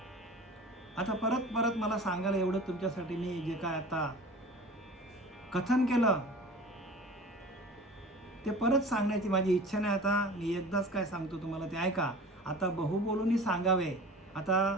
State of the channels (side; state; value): both; normal; correlation 0.40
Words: आता परत मला सांगायला एवढं तुमच्यासाठी मी जे काय आता कथन केलं ते परत सांगण्याची माझी इच्छा नाही. आता मी एकदाच काय सांगतो तुम्हाला ते ऐका. आता बहु बोलूनही सांगावे.